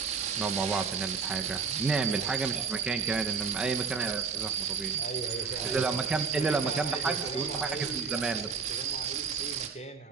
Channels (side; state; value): left; quieter; 5.2 dB